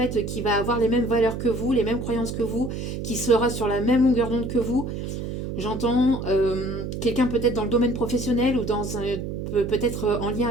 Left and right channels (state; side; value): noise; right; hum, 5 dB below the sound